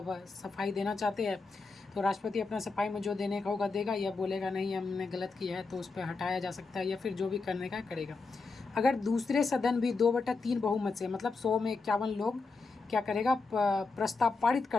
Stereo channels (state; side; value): quieter; right; 4.1 dB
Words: देना चाहते हैं, तो राष्ट्रपति अपना सफाई में जो देने का होगा देगा, या बोलेगा नहीं हमने गलत किया है तो उस पर हटाया जा सकता है, या फिर जो भी करने का करेगा। अगर दूसरे सदन भी 2/3 बहुमत से मतलब 100 में 51 लोग क्या करेगा? प्रस्ताव पारित